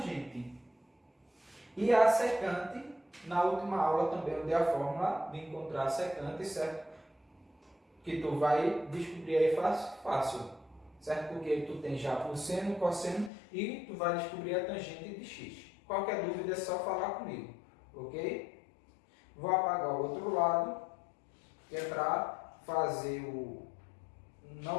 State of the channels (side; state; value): right; drops out; at 13.3 s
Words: E a secante, na última aula também eu dei a fórmula de encontrar a secante, certo? Que tu vai descobrir aí fácil. certo? Porque tu tem já o seno, o cosseno e tu vai descobrir a tangente de x. Qualquer dúvida é só falar comigo, ok? Vou apagar o outro lado, que é para fazer o...